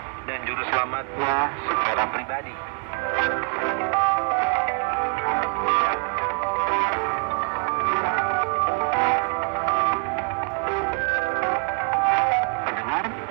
dan Juru Selamatnya secara pribadi. Pendengar,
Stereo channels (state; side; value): quieter; left; 39.9 dB